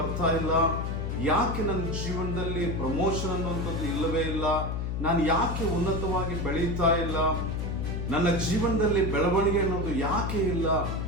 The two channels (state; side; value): noise; left; hum, 2 dB below the sound